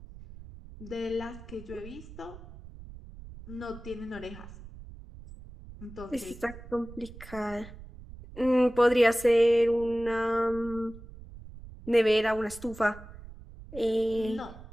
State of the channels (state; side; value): noise; right; rumble, 16 dB below the sound